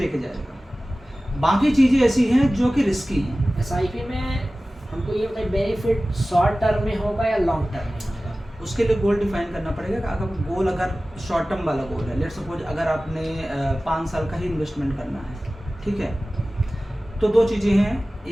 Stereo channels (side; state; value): both; normal; correlation 0.97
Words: जाएगा। बाकी चीज़ें ऐसी हैं जो कि रिस्की हैं। एसआईपी में हमको ये बताइए बेनिफिट शॉर्ट टर्म में होगा या लॉन्ग टर्म में होगा? उसके लिए गोल डिफाइन करना पड़ेगा कि अगर गोल अगर शॉर्ट टर्म वाला गोल है, लेट सपोज अगर आपने 5 साल का ही इन्वेस्टमेंट करना है, ठीक है, तो दो चीज़ें हैं